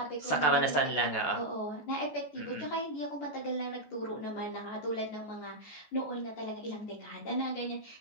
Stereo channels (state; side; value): late; right; 14 ms